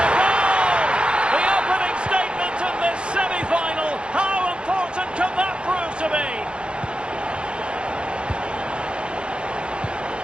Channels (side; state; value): left; late; 0.055 ms